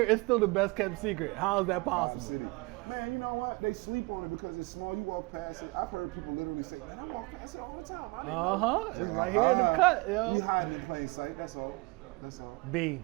it's still the best kept secret. How is that possible? Man, you know what? They sleep on it because it's small. You walk past it. I've heard people literally say, man, I walk past it all the time. I didn't know. It's right here in the cut, yo. You hiding in plain sight. That's all. B,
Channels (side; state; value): left; quieter; 26.0 dB